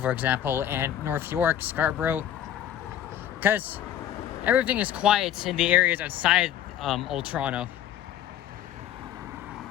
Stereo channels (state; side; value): quieter; right; 11.1 dB